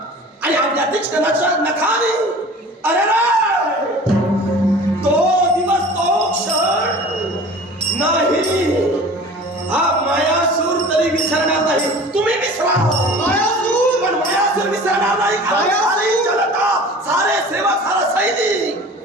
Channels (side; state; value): both; normal; correlation 0.41